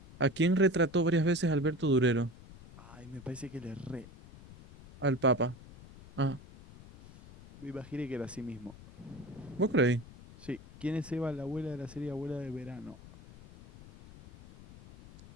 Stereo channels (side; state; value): left; noise; rumble, 19 dB below the sound